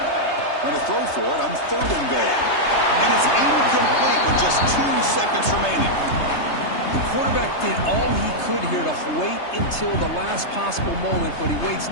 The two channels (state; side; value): late; right; 3.3 ms